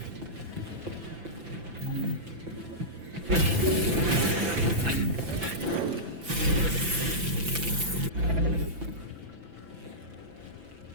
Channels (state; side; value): late; left; 5.9 ms